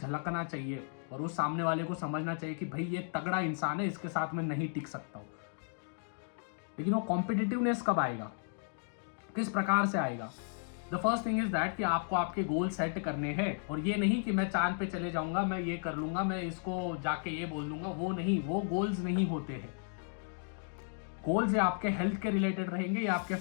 चाहिए और उस सामने वाले को समझना चाहिए कि भाई ये तगड़ा इंसान है, इसके साथ मैं नहीं टिक सकता हूं। लेकिन वो कॉम्पिटिटिवनेस कब आएगा, किस प्रकार से आएगा? The first thing is that कि आपको आपके गोल सेट करने हैं, और ये नहीं कि मैं चांद पे चले जाऊंगा, मैं ये कर लूंगा, मैं इसको जाके ये बोल दूंगा, वो नहीं, वो गोल्स नहीं होते हैं। गोल्स ये आपके हेल्थ के रिलेटेड रहेंगे, या आपके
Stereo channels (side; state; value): right; silent; 55 dB below the other